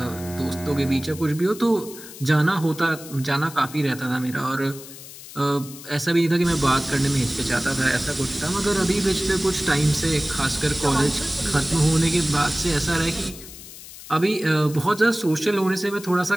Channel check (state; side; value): noise; left; hiss, 15 dB below the sound